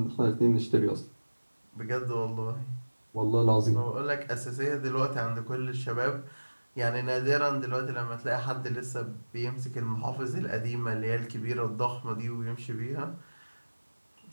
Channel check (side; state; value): both; inverted; correlation -1.00